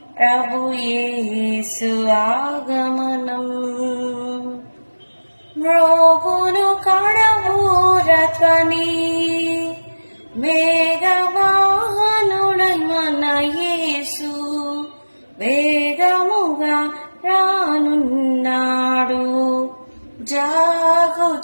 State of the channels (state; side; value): inverted; both; correlation -1.00